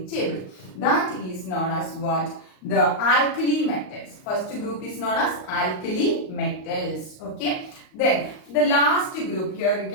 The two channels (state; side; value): late; right; 38 ms